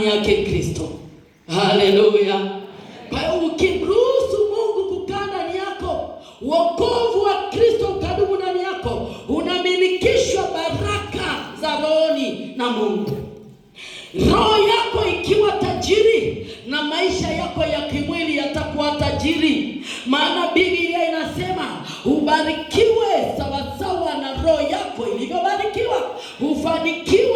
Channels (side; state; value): both; identical; correlation 1.00